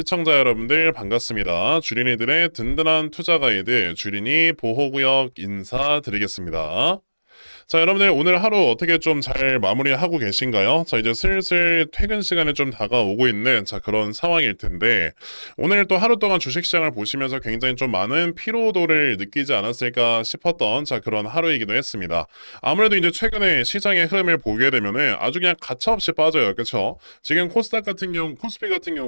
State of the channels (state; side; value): inverted; both; correlation -1.00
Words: 여러분들 반갑습니다. 주린이들의 든든한 투자 가이드, 주린이 보호구역 인사드리겠습니다. 자, 여러분들 오늘 하루 어떻게 좀 잘 마무리하고 계신가요? 자, 이제 슬슬 퇴근 시간에 좀 다가오고 있는 그런 상황일 텐데 오늘 또 하루 동안 주식시장을 보시면서 굉장히 좀 많은 피로도를 느끼지 않았을까 싶었던 그런 하루이기도 했습니다. 아무래도 이제 최근에 시장의 흐름을 보게 되면은 아주 그냥 가차없이 빠져요. 그렇죠? 지금 코스닥 같은 경우, 코스피 같은